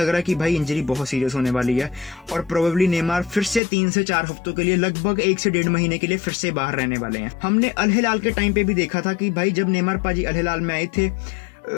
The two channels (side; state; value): right; drops out; at 3.6 s